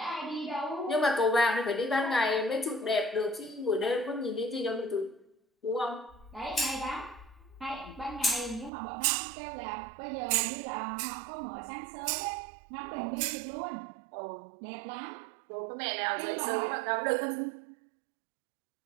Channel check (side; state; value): left; drops out; at 8.7 s